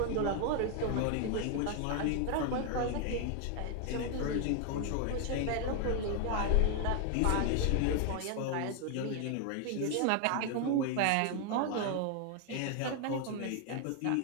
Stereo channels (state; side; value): different; both; correlation 0.01